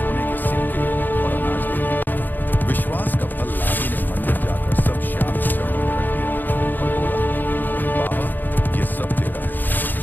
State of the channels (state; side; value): late; right; 0.088 ms